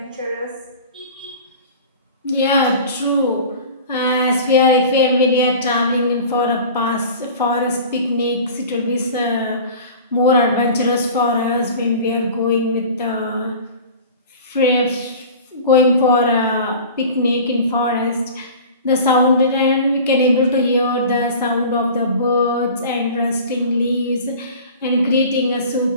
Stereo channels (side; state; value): both; inverted; correlation -0.39